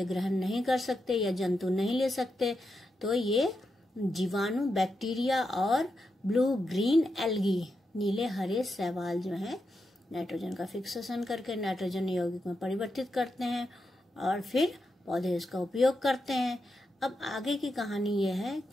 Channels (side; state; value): both; normal; correlation 0.86